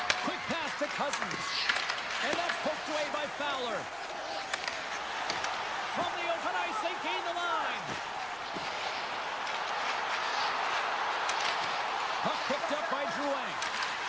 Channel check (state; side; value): noise; right; rumble, 26 dB below the sound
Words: Quick pass to Cousins. And that's poked away by Fowler. From the open ice, they gain the line. Puck picked up by Drouin.